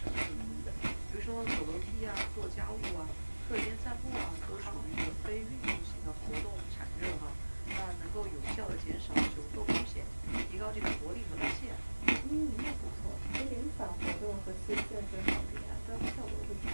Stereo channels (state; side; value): inverted; both; correlation -1.00